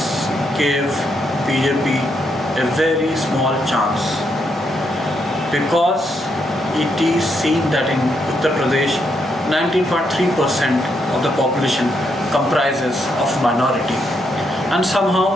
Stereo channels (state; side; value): normal; both; correlation 0.78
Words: gave BJP a very small chance because it is seen that in Uttar Pradesh 19.3% of the population comprises of minority, and